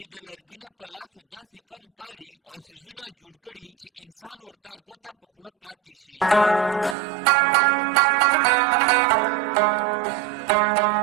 د لرګي نه په لاسو داسې فن پاري او څیزونه جوړ کړي چې انسان ورته ګوته په خوله پاتې شي.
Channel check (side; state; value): left; drops out; at 7.0 s